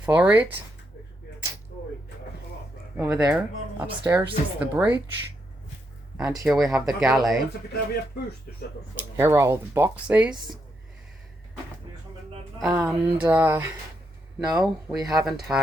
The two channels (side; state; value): both; normal; correlation 0.80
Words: it. Over there, upstairs is the bridge. And here we have the galley. Here are all the boxes. And no, we haven't